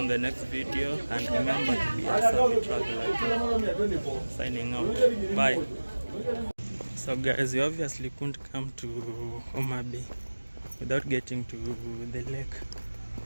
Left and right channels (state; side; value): inverted; both; correlation -1.00